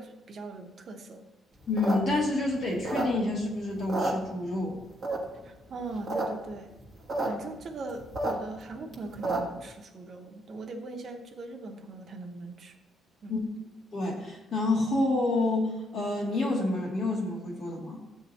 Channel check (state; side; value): normal; both; correlation 0.73